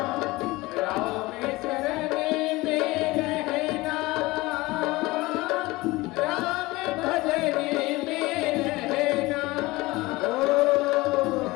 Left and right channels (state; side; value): quieter; right; 20.9 dB